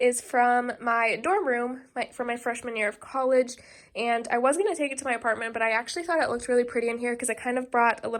from my dorm room from my freshman year of college, and I was going to take it to my apartment, but I actually thought it looked really pretty in here because it kind of brought a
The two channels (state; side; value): identical; both; correlation 1.00